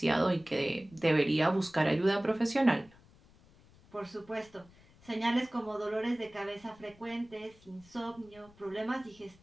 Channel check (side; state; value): left; noise; rumble, 26 dB below the sound